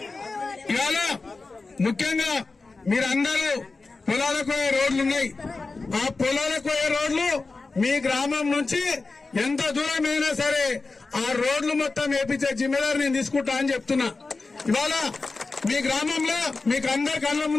ముఖ్యంగా మీరందరూ పొలాలకు పోయే రోడ్లు ఉన్నాయి. ఆ పొలాలకు పోయే రోడ్లు మీ గ్రామం నుంచి ఎంత దూరమైనా సరే ఆ రోడ్లు మొత్తం వేపించే జిమ్మేదారు నేను తీసుకుంటా అని చెప్తున్నా. ఇవాళ మీ గ్రామంలో మీకు అందరి కళ్ళ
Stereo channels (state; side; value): quieter; right; 3.8 dB